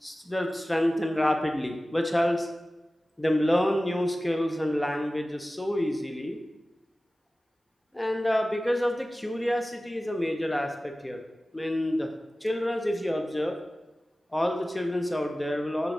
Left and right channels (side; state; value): both; normal; correlation 0.96